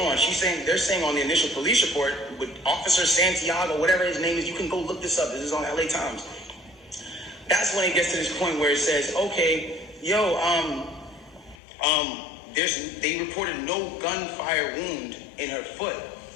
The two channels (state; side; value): drops out; right; at 11.6 s